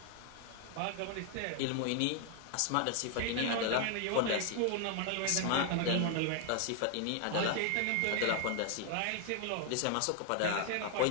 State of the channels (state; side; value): different; both; correlation 0.00